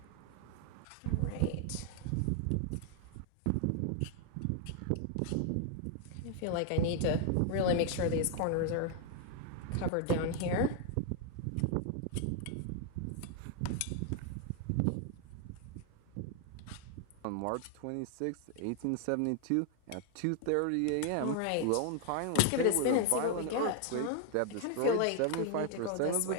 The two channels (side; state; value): both; different; correlation 0.00